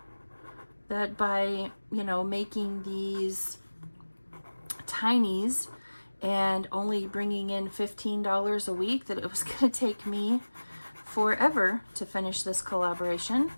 that by, you know, making these tinies and only bringing in $15 a week that it was going to take me forever to finish this collaboration.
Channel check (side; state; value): both; inverted; correlation -1.00